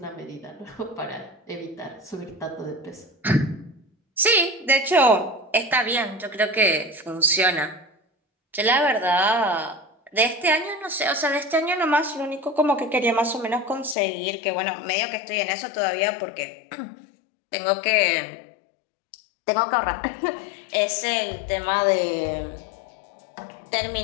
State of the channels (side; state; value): right; drops out; at 14.0 s